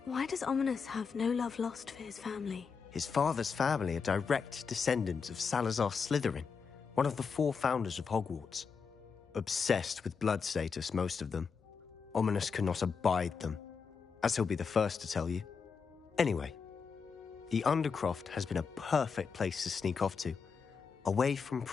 why does Ominous have no love lost for his family? His father's family are direct descendants of Salazar Slytherin, one of the 4 founders of Hogwarts. Obsessed with blood status, most of them. Ominous cannot abide them, as he'll be the first to tell you. Anyway, the Undercroft has been a perfect place to sneak off to, away from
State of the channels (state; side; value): quieter; right; 5.7 dB